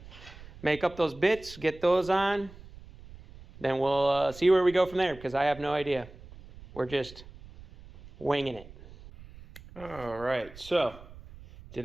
make up those bits, get those on, then we'll see where we go from there, because I have no idea. We're just winging it. All right, so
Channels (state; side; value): noise; right; rumble, 19 dB below the sound